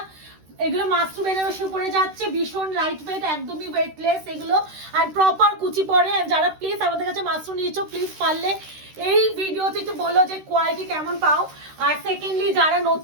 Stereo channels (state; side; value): late; left; 13 ms